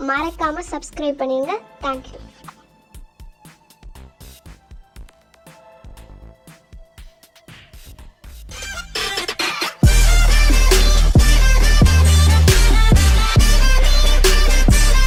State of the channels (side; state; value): both; identical; correlation 1.00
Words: மறக்காமல் சப்ஸ்கிரைப் பண்ணிடுங்க. தேங்க்யூ.